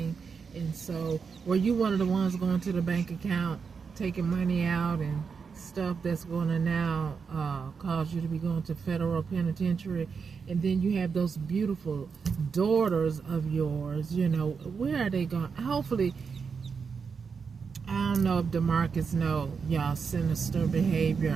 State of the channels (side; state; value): left; quieter; 5.7 dB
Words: And so, were you one of the ones going to the bank account, taking money out and stuff that's going to now cause you to be going to federal penitentiary? And then you have those beautiful daughters of yours. Where are they going? Hopefully, I don't know if DeMarcus know y'all sinister behavior